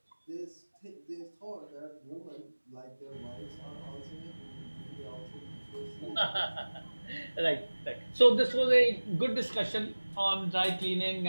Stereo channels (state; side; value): inverted; both; correlation -1.00